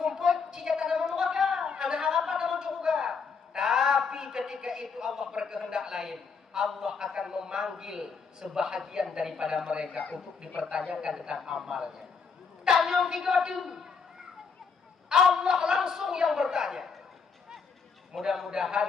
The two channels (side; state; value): right; quieter; 5.4 dB